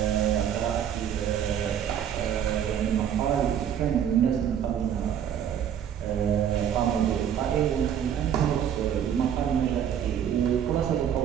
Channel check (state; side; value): quieter; left; 9.1 dB